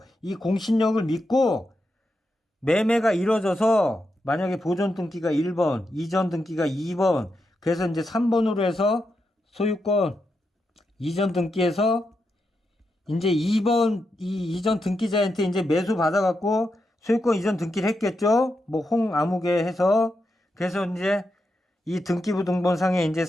이 공신력을 믿고 매매가 이루어져서 만약에 보존 등기가 1번, 이전 등기가 2번, 그래서 이제 3번으로 해서 소유권 이전 등기해서 이제 2번 이 이전 등기자한테 이제 매수 받아갖고 소유권 이전 등기를 했겠죠. 뭐 홍아무개 해서 그래서 이제 이 등기부 등본상에 이제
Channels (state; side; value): normal; both; correlation 0.86